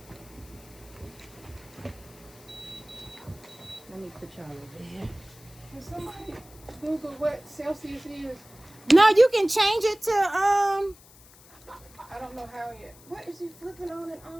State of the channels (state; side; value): noise; left; hiss, 23 dB below the sound